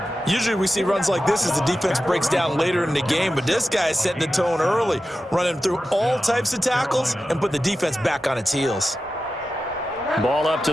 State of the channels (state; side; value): normal; both; correlation 0.92